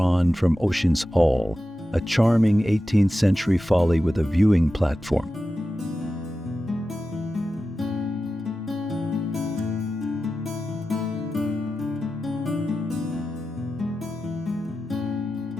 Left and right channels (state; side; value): normal; both; correlation 0.92